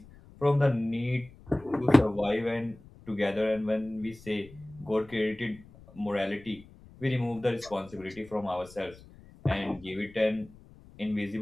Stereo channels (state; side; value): noise; left; rumble, 22 dB below the sound